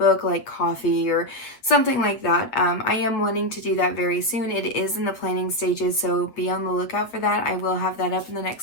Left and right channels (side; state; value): right; late; 8.4 ms